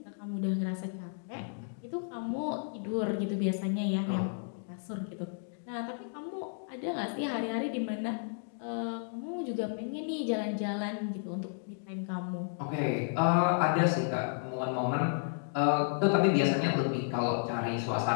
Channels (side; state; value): right; silent; digital silence